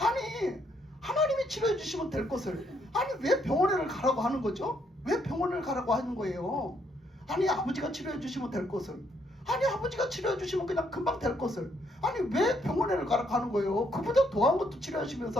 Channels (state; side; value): normal; both; correlation 0.72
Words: 하나님이 치료해 주시면 될 것을 아니 왜 병원에를 가라고 하는 거죠? 왜 병원을 가라고 하는 거예요? 아니 아버지가 치료해 주시면 될 것을, 아니 아버지가 치료해 주시면 그냥 금방 될 것을 아니 왜 병원에를 가라고 하는 거예요? 그보다 더한 것도